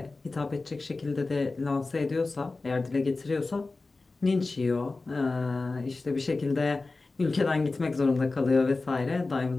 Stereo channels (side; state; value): right; quieter; 3.6 dB